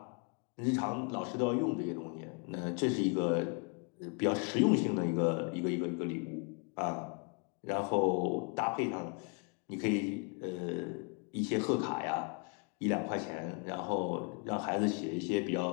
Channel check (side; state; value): right; quieter; 37.7 dB